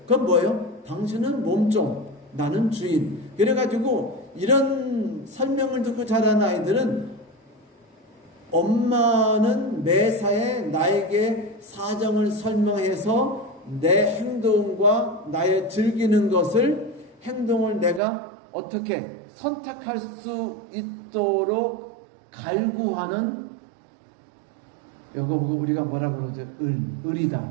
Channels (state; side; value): drops out; left; at 18.0 s